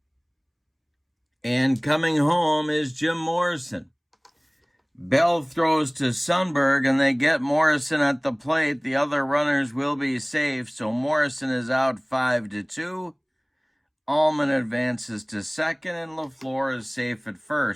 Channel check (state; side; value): identical; both; correlation 1.00